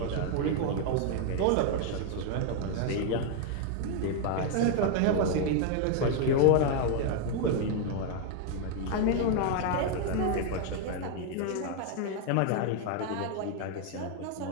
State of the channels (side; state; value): both; different; correlation 0.00